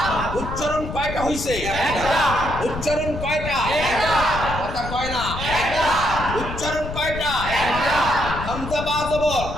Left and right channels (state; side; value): noise; left; rumble, 7 dB below the sound